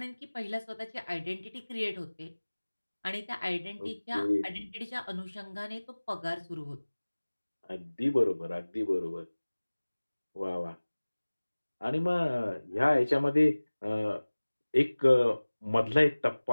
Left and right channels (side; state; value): both; inverted; correlation -1.00